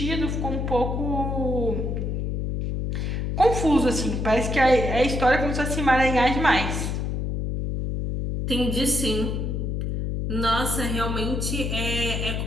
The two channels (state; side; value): noise; left; hum, 1 dB below the sound